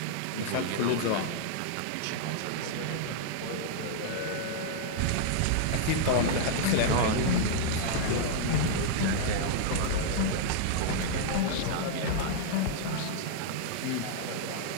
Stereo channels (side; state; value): both; different; correlation -0.01